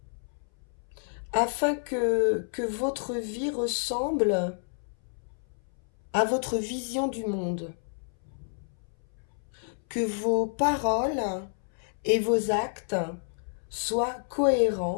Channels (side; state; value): right; silent; 58 dB below the other